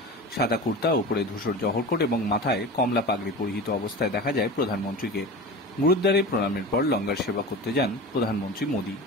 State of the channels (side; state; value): both; normal; correlation 0.31